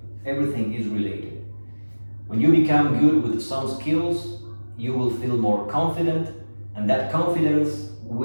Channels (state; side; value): inverted; both; correlation -1.00